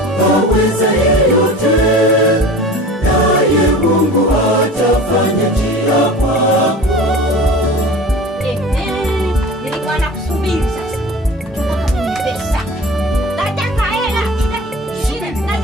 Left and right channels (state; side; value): normal; both; correlation 0.38